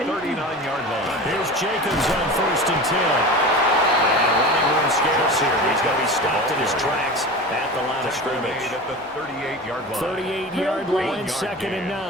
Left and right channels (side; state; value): both; normal; correlation 0.32